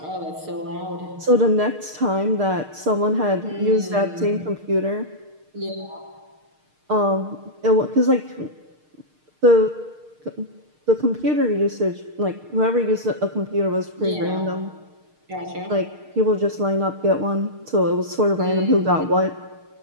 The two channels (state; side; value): late; left; 6.5 ms